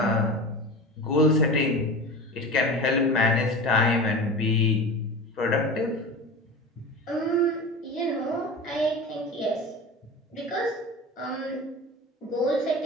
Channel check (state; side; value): normal; both; correlation 0.32